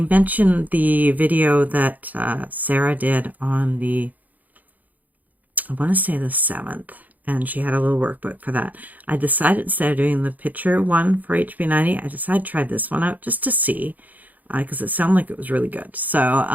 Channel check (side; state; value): left; late; 0.080 ms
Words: the video that Sarah did on the, I want to say the 7th, and she had a little workbook for that. I decided instead of doing the picture one for HB90, I decided to try this one out just to see, because it sounded like it was really good. So